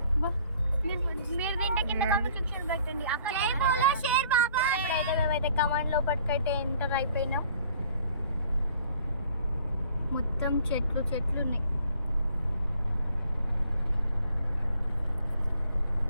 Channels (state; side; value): inverted; both; correlation -0.58